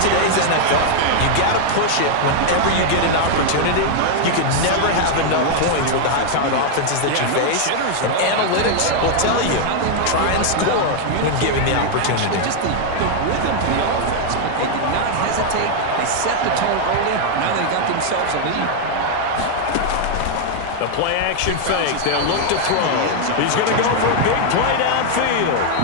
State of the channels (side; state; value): both; different; correlation 0.00